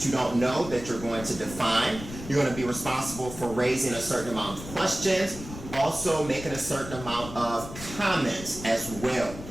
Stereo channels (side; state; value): left; noise; rumble, 12 dB below the sound